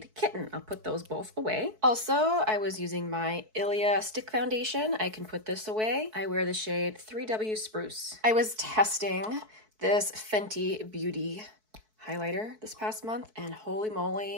Kitten. I'll put those both away. Also, I was using my e.l.f. stick foundation. I can put this away. I wear the shade 3W Spruce. I was testing this Fenty Beauty highlighter this past month, and holy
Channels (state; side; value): late; left; 4.6 ms